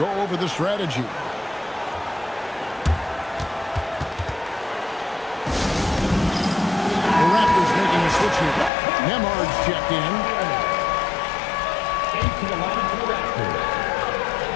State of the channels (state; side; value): drops out; right; at 8.7 s